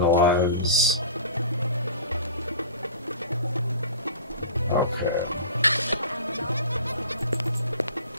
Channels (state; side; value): inverted; both; correlation -0.39